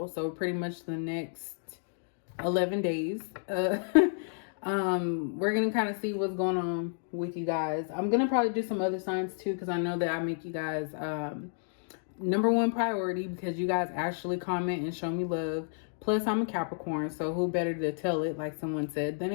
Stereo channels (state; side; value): silent; right; digital silence